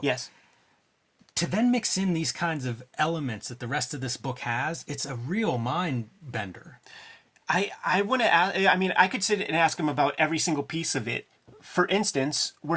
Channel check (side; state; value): both; identical; correlation 1.00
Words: Yes. To then mix in these kinds of elements that the rest of this book has, it's a real mind bender. I want to ask, I could sit and ask him about every single piece of it. For instance,